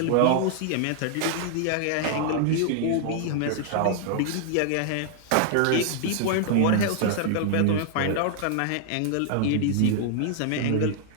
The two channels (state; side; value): different; both; correlation -0.01